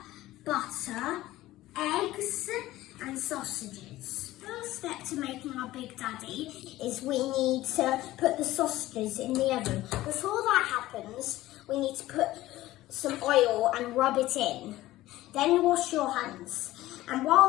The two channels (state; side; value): quieter; right; 16.3 dB